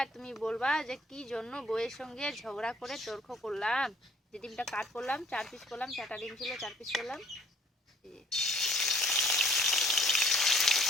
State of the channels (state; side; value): normal; both; correlation 0.58